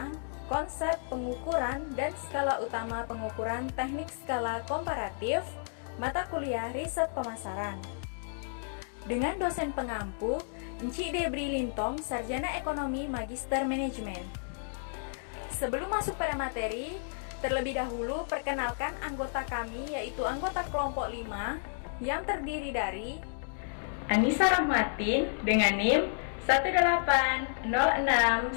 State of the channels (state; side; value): silent; right; digital silence